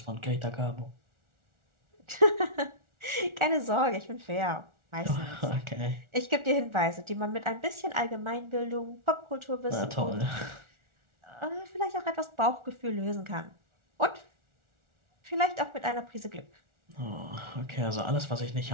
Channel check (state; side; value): late; left; 1.4 ms